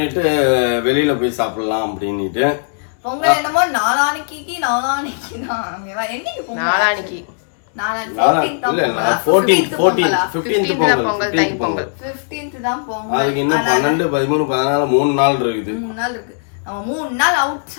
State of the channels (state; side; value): silent; right; digital silence